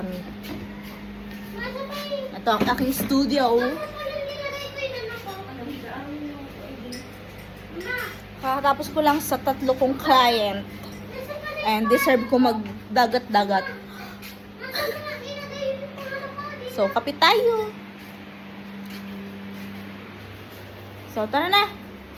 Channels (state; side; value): identical; both; correlation 1.00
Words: Ito ang aking studio. Kakatapos ko lang sa 3 kong client. And deserve ko magdagat-dagat. So, kapit tayo. So, tara na.